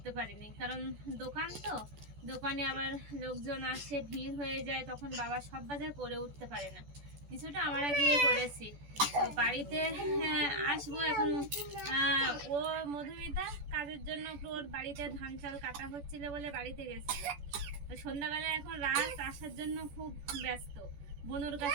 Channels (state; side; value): late; left; 14 ms